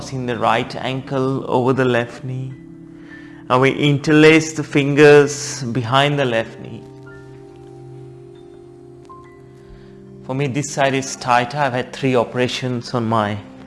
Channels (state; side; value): identical; both; correlation 1.00